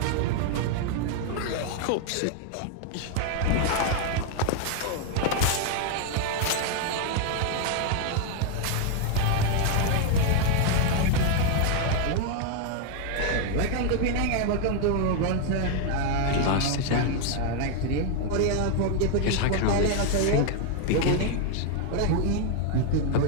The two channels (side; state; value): both; different; correlation 0.00